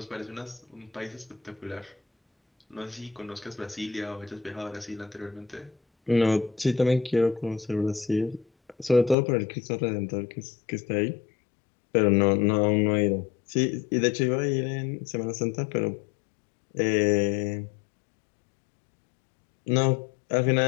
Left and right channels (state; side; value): drops out; right; at 9.2 s